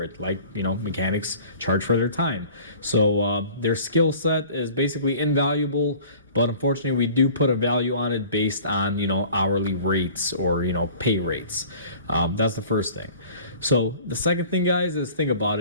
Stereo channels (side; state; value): both; inverted; correlation -0.46